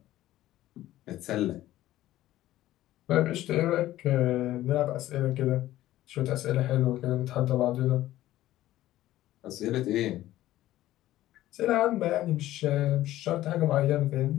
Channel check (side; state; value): right; quieter; 14.8 dB